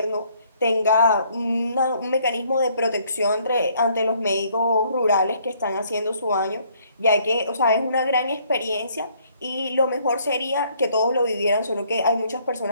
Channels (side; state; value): both; inverted; correlation -0.65